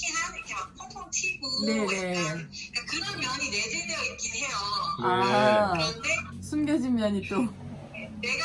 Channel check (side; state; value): both; identical; correlation 1.00